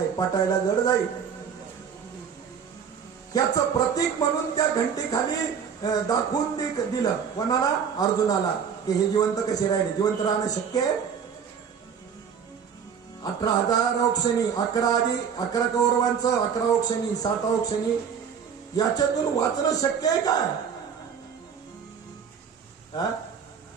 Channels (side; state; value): left; quieter; 7.2 dB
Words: पटायला जड जाईल. याचं प्रतीक म्हणून त्या घंटेखाली दाखवून दिलं कोणाला? अर्जुनाला, की हे जिवंत कसे राहिले. जिवंत राहणं शक्य आहे? 18,000 औक्षणी, 11 कौरवांचं, 11 औक्षणी, 7 औक्षणी, याच्यातून वाचणं शक्य आहे काय?